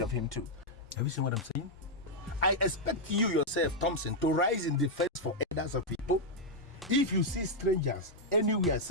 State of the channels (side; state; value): both; normal; correlation -0.02